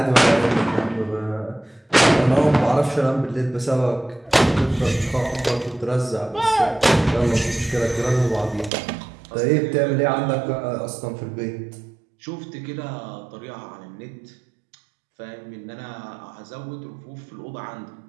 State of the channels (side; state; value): left; drops out; at 8.7 s